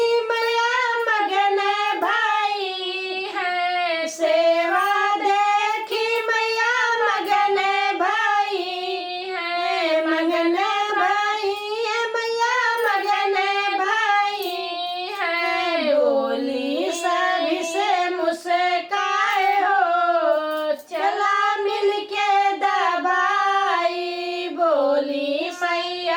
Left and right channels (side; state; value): both; identical; correlation 1.00